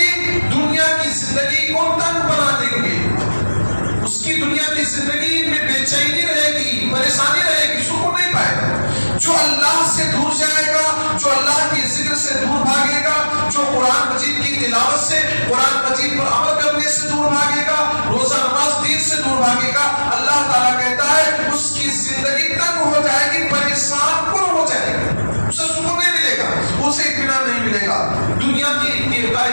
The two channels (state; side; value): inverted; both; correlation -1.00